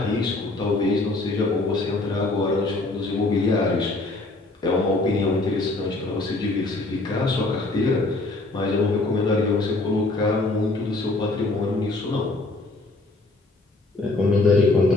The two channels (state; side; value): quieter; right; 3.1 dB